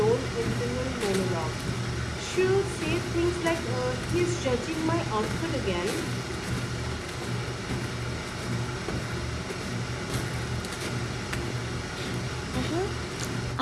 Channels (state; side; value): identical; both; correlation 1.00